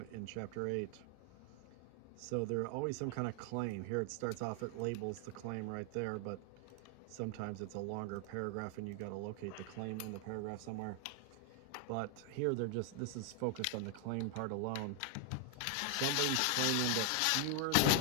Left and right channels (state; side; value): different; both; correlation 0.00